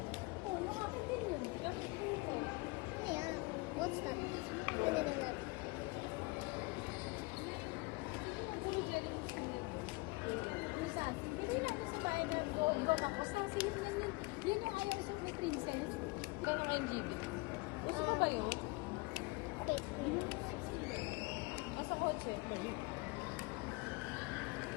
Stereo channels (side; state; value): right; quieter; 26.3 dB